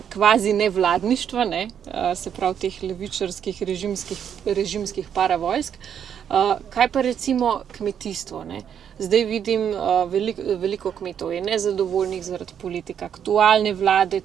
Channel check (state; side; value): quieter; left; 8.6 dB